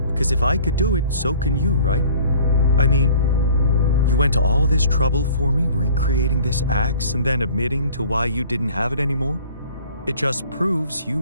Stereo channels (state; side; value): inverted; both; correlation -0.51